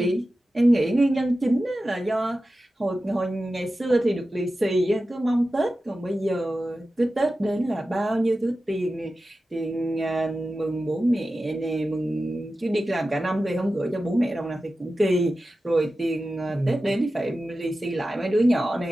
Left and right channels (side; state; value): both; normal; correlation 0.94